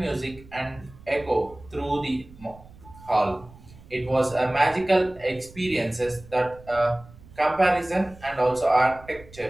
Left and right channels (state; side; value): noise; right; rumble, 21 dB below the sound